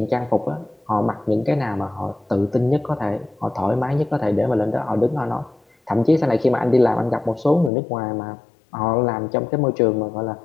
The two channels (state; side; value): drops out; right; at 7.7 s